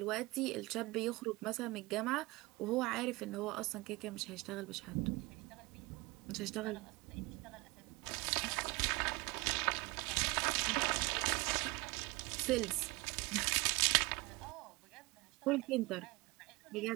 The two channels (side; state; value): left; quieter; 23.4 dB